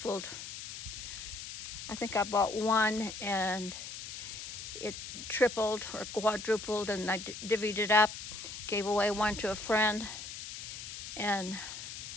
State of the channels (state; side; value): noise; left; hiss, 9 dB below the sound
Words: I think I bought one and it tripled or quadrupled, and I divvied it up, gave away one to a friend. And